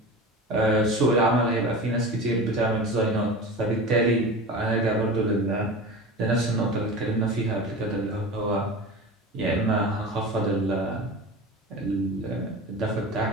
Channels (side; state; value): both; normal; correlation 0.31